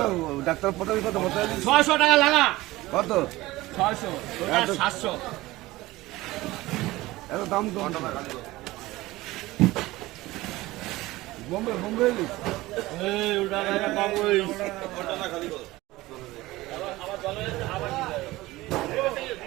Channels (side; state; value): left; quieter; 18.7 dB